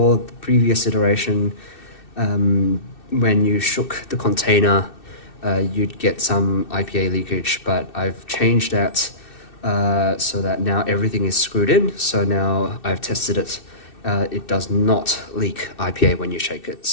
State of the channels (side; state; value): right; late; 2.6 ms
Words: the previous iteration, when you shook the container, you'd get some IPA leakage, but I've changed that so that now everything is screwed in. So now I've tested it. It does not leak IPA when you shake it.